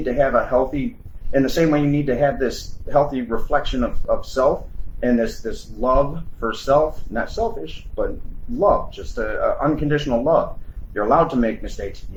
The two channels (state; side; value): identical; both; correlation 1.00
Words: to have a healthy, in the same way you need to have this healthy reflection of self, and this love for self, not selfish, but love, just a unconditional love. You're allowed to make mistakes. You